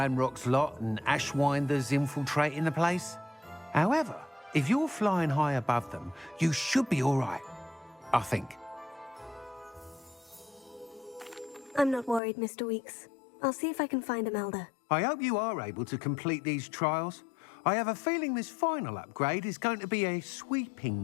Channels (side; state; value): right; drops out; at 12.2 s